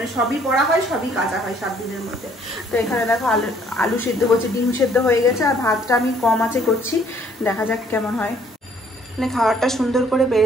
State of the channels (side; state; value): both; normal; correlation 0.62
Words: সবই পরা হয়, সবই কাঁচা হয় 7 দিনের মধ্যে। তো এখানে দেখো আলু সেদ্ধ করছে, ডিম সেদ্ধ হয়ে গেছে, আর ভাতটা আমি কম আঁচে করছি, দেখা যাক কেমন হয়। মানে খাবারটা সুন্দর করে